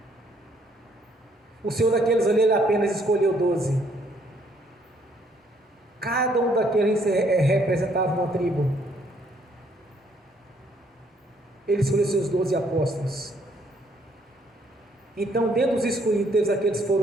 O Senhor daqueles ali, Ele apenas escolheu 12. Cada um daqueles representava uma tribo. Ele escolheu seus 12 apóstolos. Então, dentro dos escolhidos, aqueles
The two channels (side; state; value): both; normal; correlation 0.67